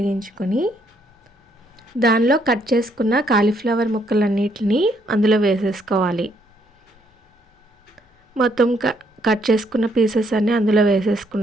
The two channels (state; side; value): normal; both; correlation 0.71